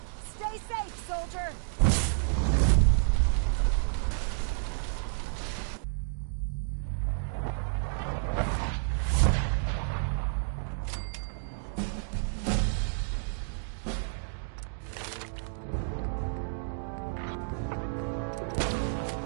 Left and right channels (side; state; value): left; silent; digital silence